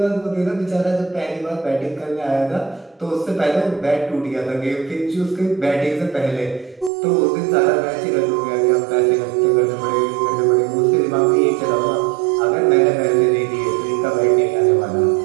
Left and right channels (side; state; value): left; drops out; at 6.9 s